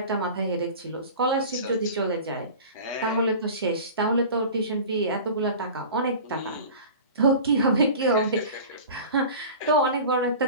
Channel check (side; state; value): both; inverted; correlation -0.37